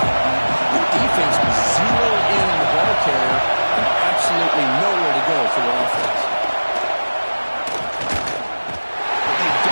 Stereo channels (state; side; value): inverted; both; correlation -1.00